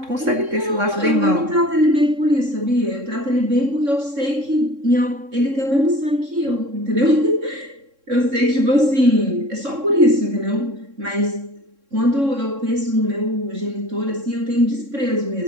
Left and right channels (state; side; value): late; left; 3.6 ms